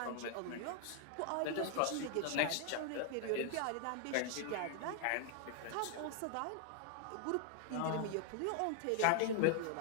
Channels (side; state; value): both; different; correlation 0.00